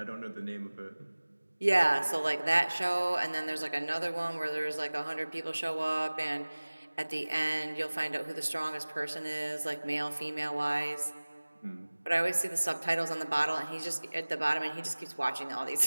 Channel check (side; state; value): both; inverted; correlation -1.00